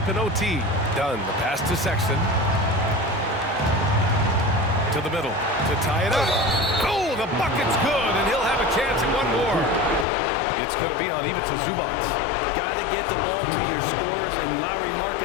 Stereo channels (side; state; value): right; drops out; at 10.1 s